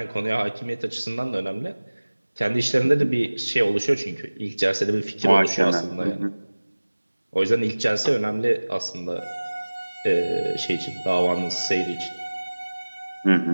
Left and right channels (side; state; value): both; inverted; correlation -1.00